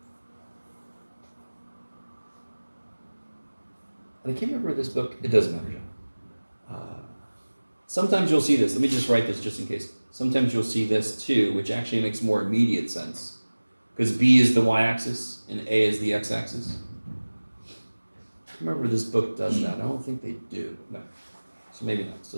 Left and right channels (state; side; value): inverted; both; correlation -1.00